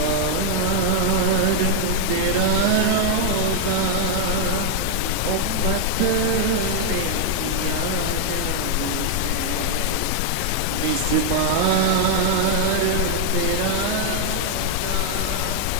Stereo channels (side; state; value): both; different; correlation 0.00